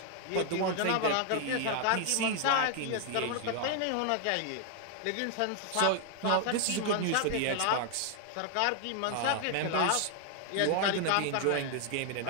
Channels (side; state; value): both; different; correlation 0.00